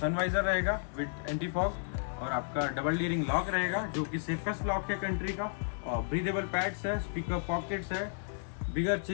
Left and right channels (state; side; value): silent; right; digital silence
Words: वाइजर रहेगा विद एंटी फॉग, और आपका डबल डी रिंग लॉक रहेगा जो कि सेफेस्ट लॉक है कंट्री का। और ब्रीदेबल पैड्स है, स्पीकर पॉकेट्स है, बिगर